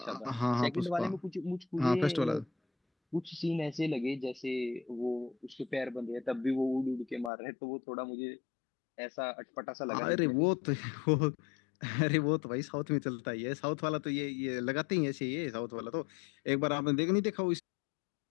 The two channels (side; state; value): right; drops out; at 7.3 s